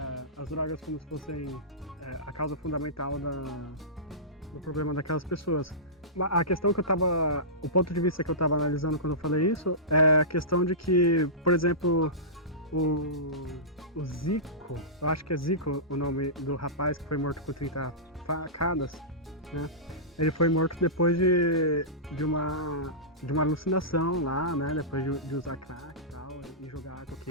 as drogas como se fossem a causa fundamental do problema daquelas pessoas. A questão o ponto de vista que eu estava analisando quando eu falei isso é a questão de que, por exemplo, o Zico, eu acho que é Zico o nome do rapaz que foi morto com 30 facadas, né? Ele foi morto depois de uma alucinação lá, né? Depois de usar crack e tal, e jogar água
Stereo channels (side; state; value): both; normal; correlation -0.19